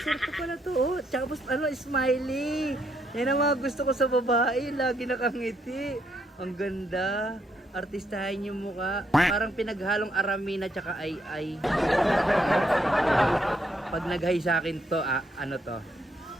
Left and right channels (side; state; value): both; normal; correlation 0.75